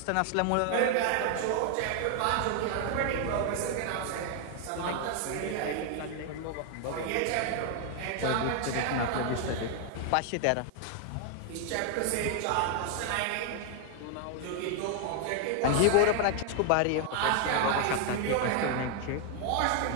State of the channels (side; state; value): both; different; correlation 0.00